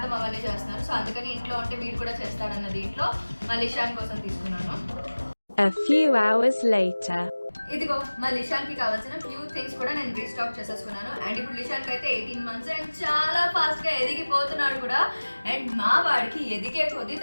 అవన్నీ చేస్తున్నారు. సో అందుకని ఇంట్లో ఉంటే వీడు కూడా చేస్తాడన్న దీంట్లో మళ్ళీ ఇషాన్ కోసం తీసుకున్నాను. A few hours later. ఇదిగో మా లిషాన్కి కావాల్సిన ఫ్యూ థింగ్స్ కూడా నేను రీస్టాక్ చేసేసుకున్నాను. అండ్ ఇప్పుడు లిషాన్కి అయితే 18 months అండ్ చాలా ఫాస్ట్గా ఎదిగిపోతున్నాడు కూడా. అండ్ మా వాడికి ఎదిగే కొద్దీ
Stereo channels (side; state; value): both; inverted; correlation -1.00